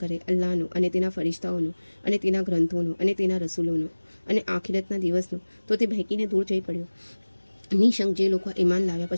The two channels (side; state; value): both; inverted; correlation -1.00